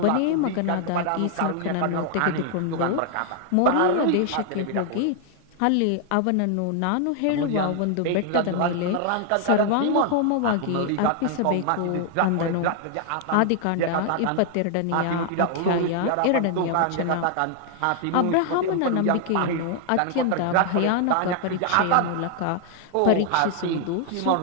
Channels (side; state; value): both; different; correlation 0.00